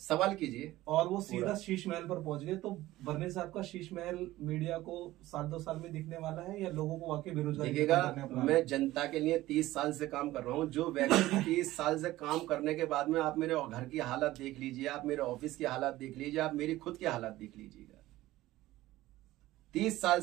कीजिए, और वो सीधा शीश महल पर पहुंच गए। तो बर्नी साहब का शीश महल मीडिया को 7-2 साल में दिखने वाला है, या लोगों को वाकई बेरोजगारी दिखेगा? मैं जनता के लिए 30 साल से काम कर रहा हूँ। जो व्यक्ति 30 साल से काम करने के बाद में आप मेरे घर की हालत देख लीजिए, आप मेरे ऑफिस की हालत देख लीजिए, आप मेरी खुद की हालत देख लीजिएगा। 30 साल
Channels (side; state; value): left; quieter; 16.6 dB